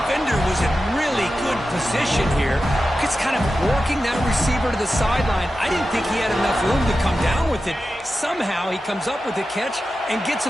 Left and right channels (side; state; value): both; normal; correlation 0.92